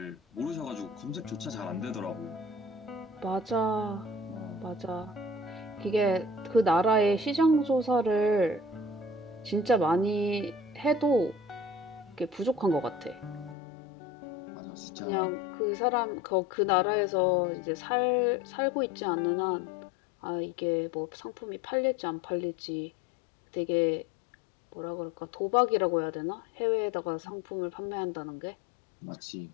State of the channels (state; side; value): drops out; right; at 13.6 s